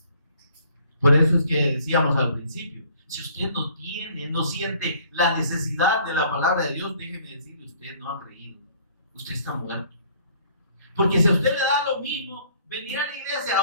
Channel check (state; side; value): inverted; both; correlation -0.58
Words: Por eso es que decíamos al principio, si usted no siente la necesidad de la palabra de Dios, déjeme decirle, usted no ha creído. Usted está muerto. Porque si a usted le da lo mismo venir a la